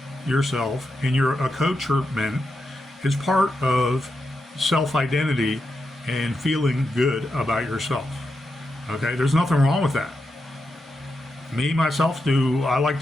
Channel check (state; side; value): normal; both; correlation 0.87